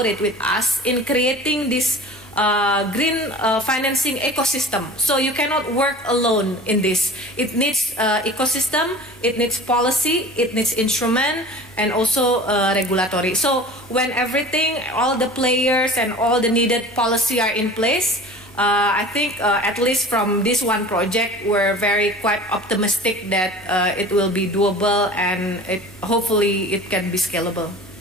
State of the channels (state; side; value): normal; both; correlation 0.40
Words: with us in creating this green financing ecosystem. So you cannot work alone in this. It needs ecosystem, it needs policy, it needs instrument, and also regulatory. So when everything, all the players and all the needed policy are in place, I think at least from this one project, we're quite optimistic that it will be doable and hopefully it can be scalable.